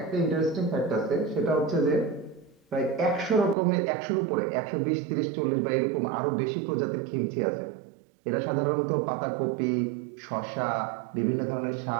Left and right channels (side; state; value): left; drops out; at 3.6 s